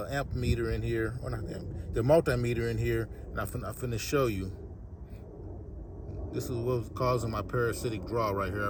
amp meter in here, or not the multimeter in here, and I'm finna show you. This is what was causing my parasitic draw right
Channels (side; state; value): both; identical; correlation 1.00